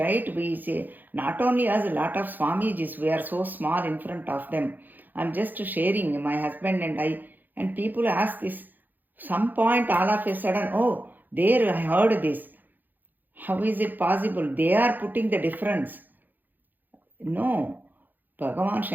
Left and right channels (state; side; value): late; left; 0.087 ms